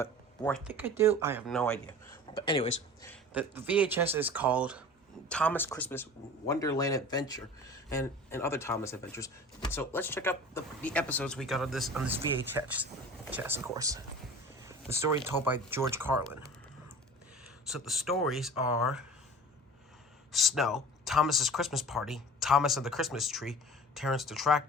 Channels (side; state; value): both; normal; correlation 0.39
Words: or I think I do, I have no idea. But anyways, the VHS is called Thomas Christmas Wonderland Adventure, and other Thomas adventures. So let's check out the episodes we got on this VHS, of course. The story told by George Carlin. So the stories are Snow, Thomas's Christmas Party, Thomas and the Christmas Tree, Terrence the